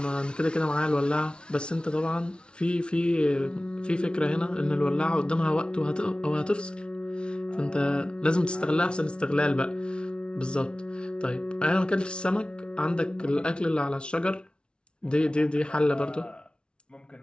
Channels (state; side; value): late; right; 0.057 ms